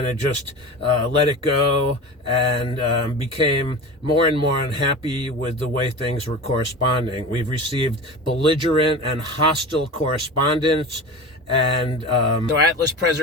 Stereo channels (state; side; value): normal; both; correlation 0.30